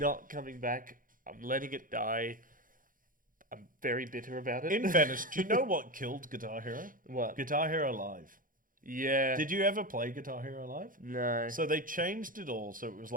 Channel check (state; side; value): late; left; 0.40 ms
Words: coming back. I'm letting it die. I'm very bitter about it. in fairness, do you know what killed Guitar Hero? What? Guitar Hero Live. Yeah. Did you ever play Guitar Hero Live? No. So they changed it all. So it was